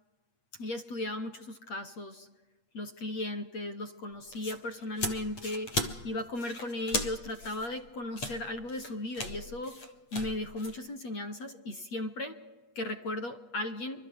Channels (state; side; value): late; right; 8.4 ms